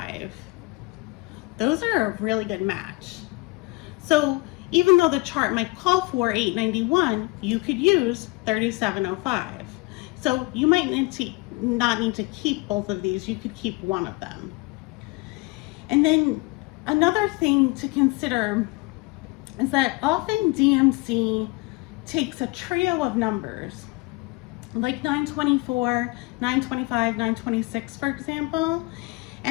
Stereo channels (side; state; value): right; quieter; 24.9 dB